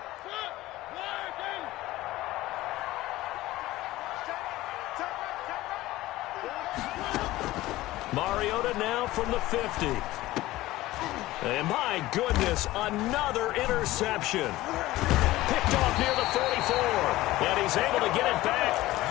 Mariota now from the 50. And my goodness, another interception. Picked off near the 44. And he's able to get it back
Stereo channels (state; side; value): quieter; right; 17.2 dB